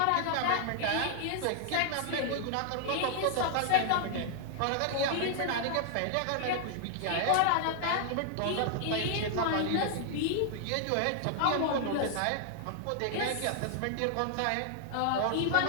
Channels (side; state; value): both; different; correlation 0.00